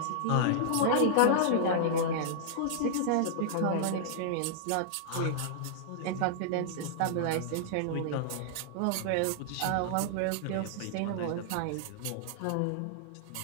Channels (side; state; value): both; different; correlation -0.01